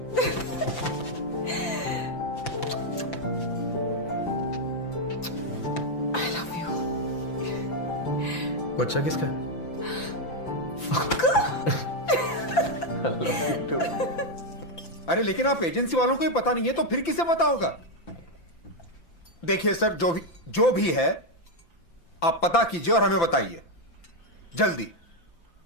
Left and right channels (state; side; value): late; right; 5.9 ms